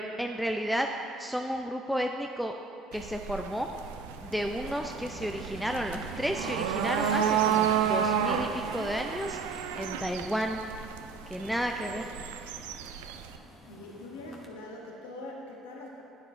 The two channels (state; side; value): quieter; left; 3.6 dB